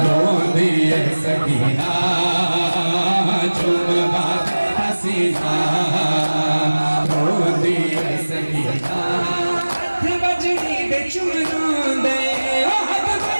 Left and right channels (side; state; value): both; inverted; correlation -1.00